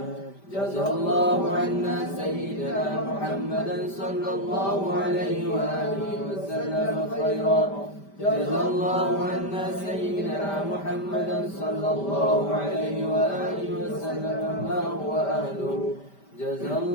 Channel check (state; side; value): late; right; 5.1 ms